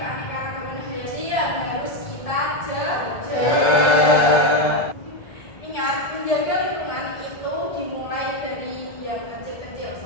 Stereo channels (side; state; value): right; late; 1.7 ms